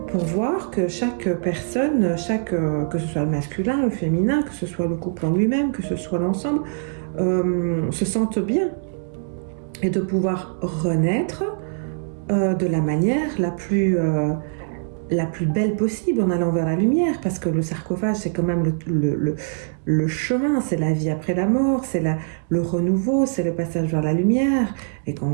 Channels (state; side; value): silent; left; digital silence